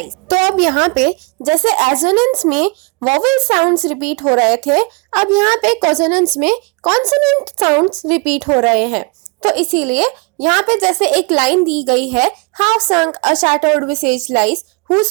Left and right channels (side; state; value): left; quieter; 30.1 dB